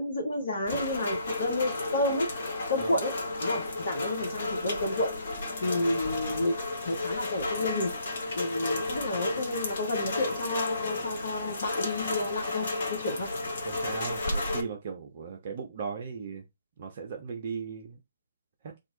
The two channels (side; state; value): both; inverted; correlation -0.70